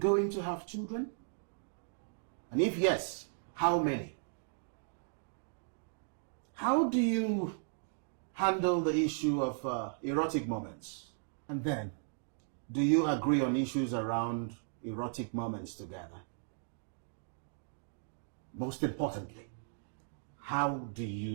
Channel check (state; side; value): silent; left; digital silence